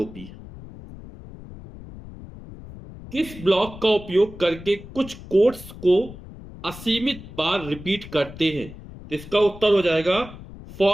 किस ब्लॉक का उपयोग करके कुछ कोड्स को असीमित बार रिपीट करते हैं? तो इसका उत्तर हो जाएगा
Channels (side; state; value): left; noise; rumble, 15 dB below the sound